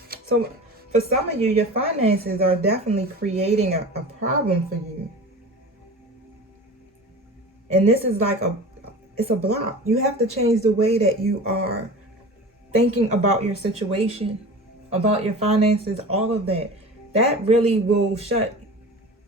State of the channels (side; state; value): both; normal; correlation 0.35